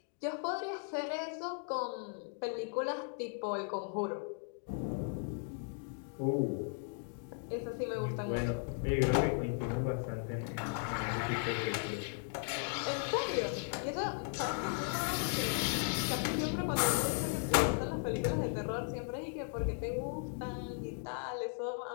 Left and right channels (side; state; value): right; silent; 53 dB below the other